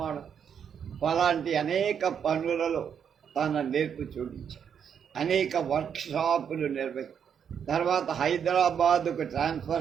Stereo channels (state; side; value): quieter; left; 7.8 dB